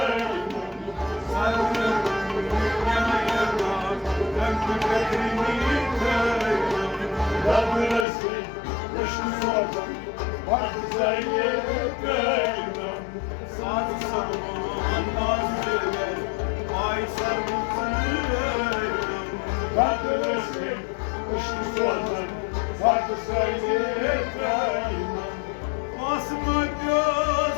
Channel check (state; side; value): drops out; right; at 8.1 s